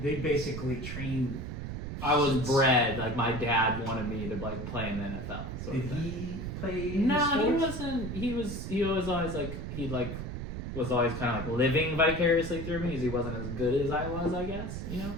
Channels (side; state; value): right; noise; rumble, 6 dB below the sound